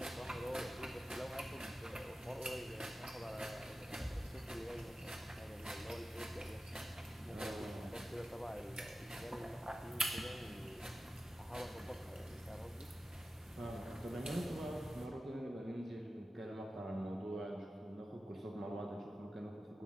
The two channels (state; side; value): normal; both; correlation 0.94